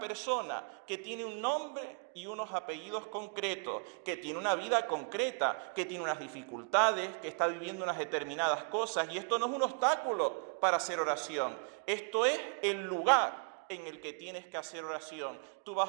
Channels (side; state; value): left; quieter; 32.9 dB